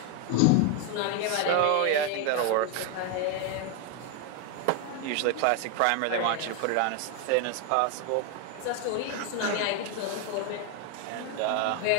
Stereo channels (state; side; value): different; both; correlation 0.01